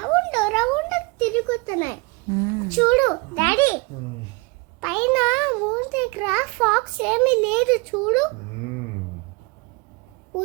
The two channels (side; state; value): left; quieter; 28.3 dB